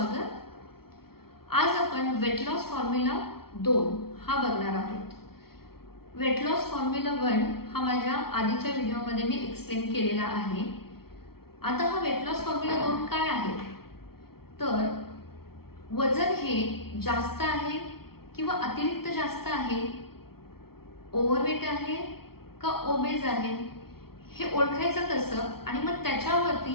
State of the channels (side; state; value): right; late; 0.94 ms